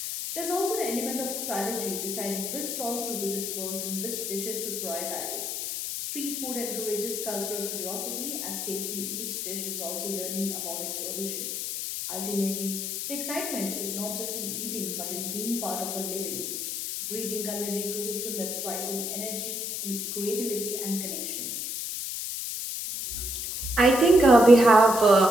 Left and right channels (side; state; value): left; noise; hiss, 3 dB below the sound